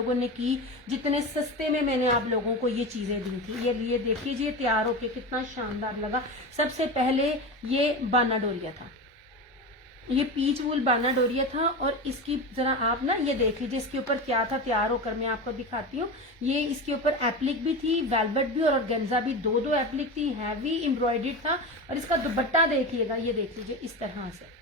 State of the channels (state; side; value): normal; both; correlation 0.23